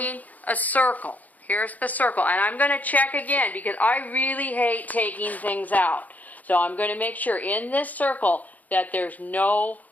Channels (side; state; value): right; late; 0.078 ms